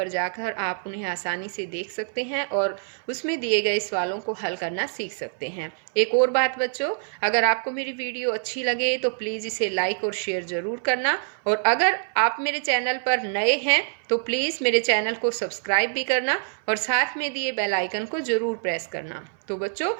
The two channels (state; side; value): silent; left; 58 dB below the other